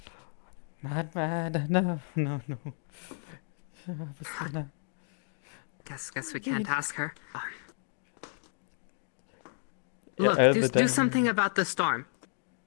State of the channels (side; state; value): right; silent; 56 dB below the other